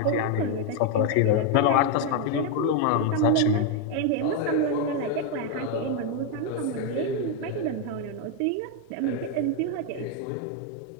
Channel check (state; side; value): different; both; correlation 0.01